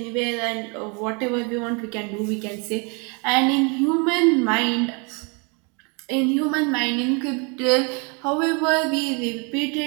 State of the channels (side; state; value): left; quieter; 33.2 dB